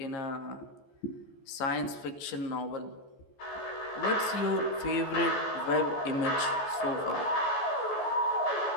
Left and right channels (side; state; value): right; late; 14 ms